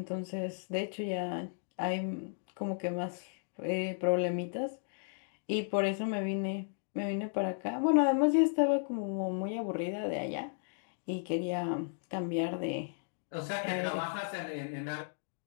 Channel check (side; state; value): right; silent; digital silence